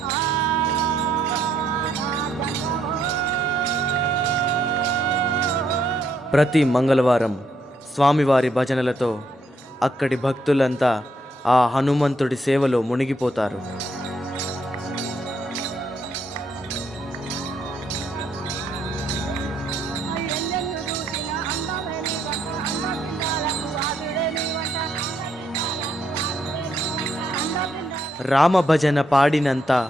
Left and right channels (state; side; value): normal; both; correlation 0.74